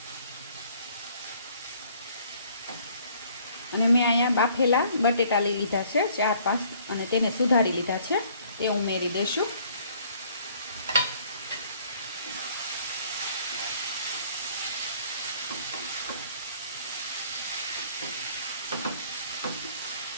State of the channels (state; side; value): inverted; both; correlation -0.59